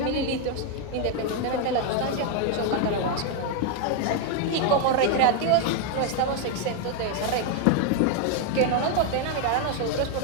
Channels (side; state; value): both; different; correlation 0.01